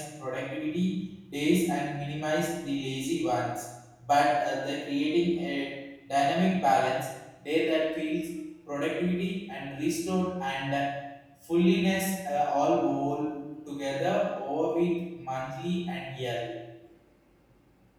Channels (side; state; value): both; identical; correlation 1.00